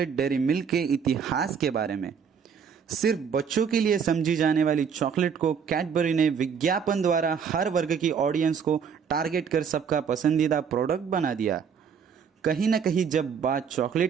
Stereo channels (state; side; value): quieter; left; 6.8 dB